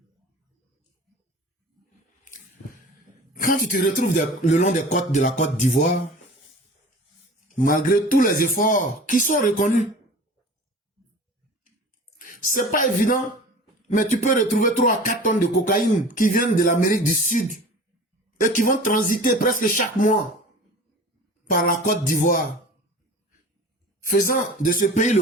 Quand tu te retrouves le long des côtes de la Côte d'Ivoire, malgré tous les efforts qui sont reconnus, c'est pas évident, mais tu peux retrouver 3 à 4 tonnes de cocaïne qui viennent de l'Amérique du Sud et qui vont transiter presque chaque mois par la Côte d'Ivoire, faisant de ce pays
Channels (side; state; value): both; normal; correlation 0.40